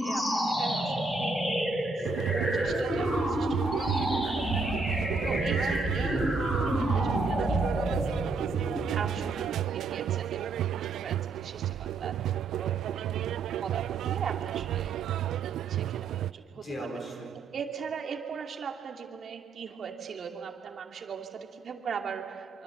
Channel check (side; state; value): left; quieter; 3.8 dB